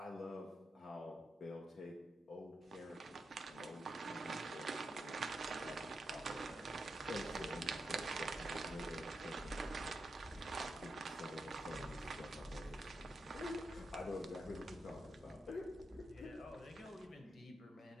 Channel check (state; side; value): normal; both; correlation 0.86